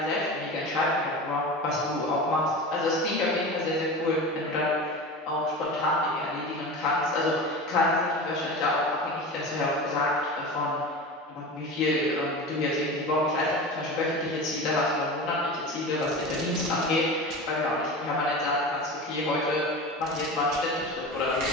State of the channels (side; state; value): both; normal; correlation 0.30